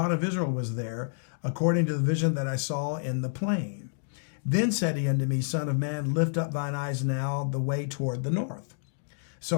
of Israel was there, according to the vision that I saw in the plain. Then said he unto me, Son of man, lift up thine eyes now the way toward the north. So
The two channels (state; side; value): silent; right; digital silence